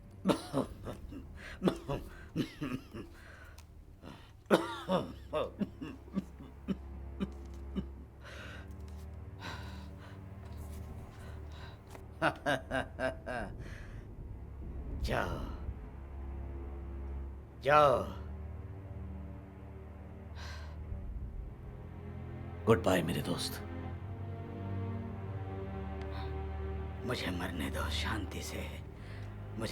जाओ जाओ। गुड बाय मेरे दोस्त। मुझे मरने दो शांति से।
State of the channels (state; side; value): identical; both; correlation 1.00